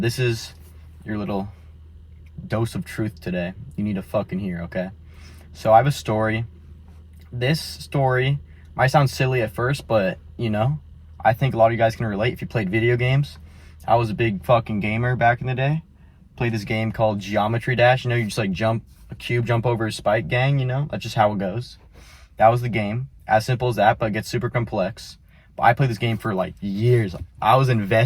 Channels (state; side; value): identical; both; correlation 1.00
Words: this is your little dose of truth today. You need to fucking hear, okay? So I have a story. This story might sound silly at first, but I think a lot of you guys can relate if you played video games. I was a big fucking gamer back in the day. Played this game called Geometry Dash. You just like jump a cube, jump over a spike gang, That's just how it goes. That was the game. As simple as that, but it gets super complex. But I played this game for like years. I was